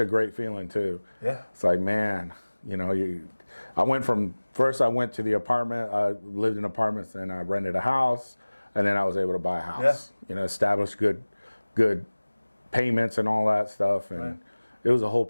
great feeling too. Yeah. It's like, man, I went from, first I went to the apartment, I lived in apartments, and I rented a house, and then I was able to buy a house. Yeah. Establish good payments and all that stuff, and it was a whole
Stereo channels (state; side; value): inverted; both; correlation -1.00